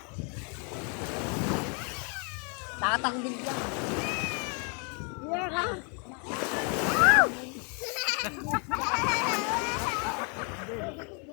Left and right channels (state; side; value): quieter; right; 37.3 dB